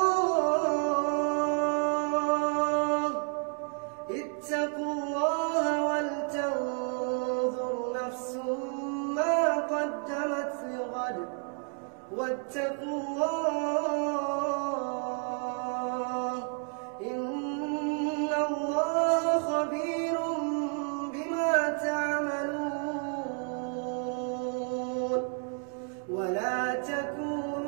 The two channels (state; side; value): quieter; left; 39.2 dB